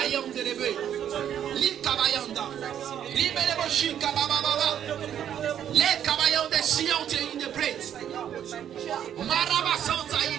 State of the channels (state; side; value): quieter; left; 9.8 dB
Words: Yanda Lebe. Li Kabayanda. Libelebo Shika Baba. Le Kabayanda Siante in the praise. Maraba Santa